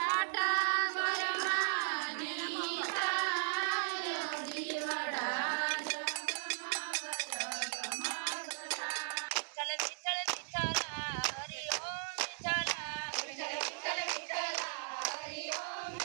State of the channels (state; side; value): silent; left; digital silence